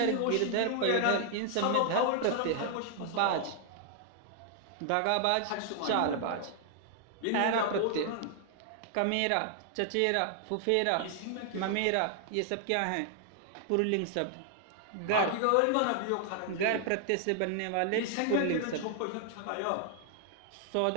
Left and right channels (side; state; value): both; different; correlation 0.00